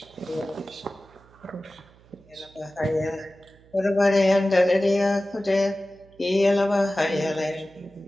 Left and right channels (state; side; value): noise; right; hum, 27 dB below the sound